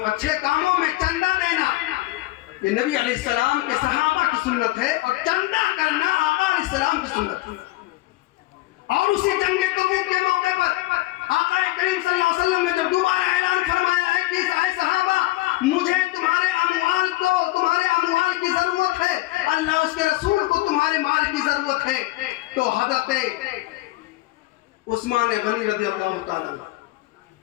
اچھے کاموں میں چندہ دینا یہ نبی علیہ السلام کے صحابہ کی سنت ہے, اور چندہ کرنا آقا علیہ السلام کی سنت ہے. اور اسی جنگ تبوک کے موقع پر آقا کریم صلی اللہ علیہ وسلم نے جب دوبارہ اعلان فرمایا ہے کہ اے صحابہ, مجھے تمہارے اموال کی ضرورت ہے, اللہ اس کے رسول کو تمہارے مال کی ضرورت ہے, تو حضرت عثمان غنی رضی اللہ تعالیٰ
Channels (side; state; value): right; quieter; 18.7 dB